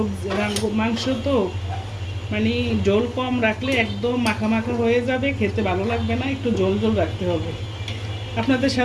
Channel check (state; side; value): identical; both; correlation 1.00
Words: মাংস তো মানে ঝোল কম রাখলে একদম মাখা মাখা হয়ে যাবে, খেতে ভালো লাগবে না। একটু ঝোল ঝোল রাখতে হবে। আপনাদের